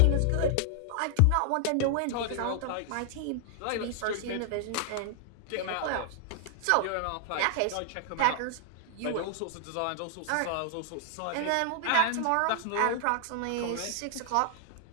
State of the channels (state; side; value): different; both; correlation 0.00